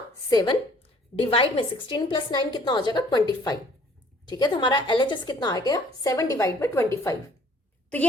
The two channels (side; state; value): both; normal; correlation 0.57